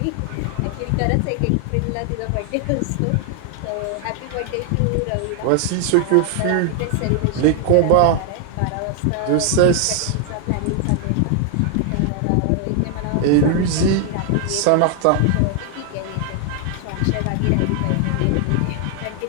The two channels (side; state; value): both; different; correlation 0.00